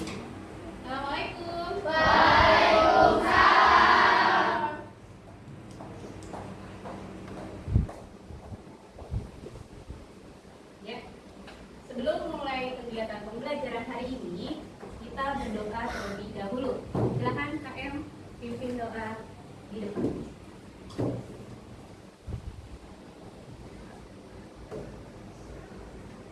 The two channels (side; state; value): both; identical; correlation 1.00